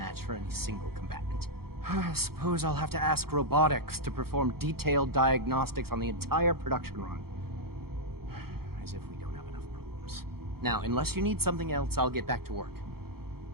for any single combatant. I suppose I'll have to ask robotics to perform detailed diagnostics on the entire production run. As if we don't have enough problems. Now, unless you need something else, I'll get back to work.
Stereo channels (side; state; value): left; late; 0.94 ms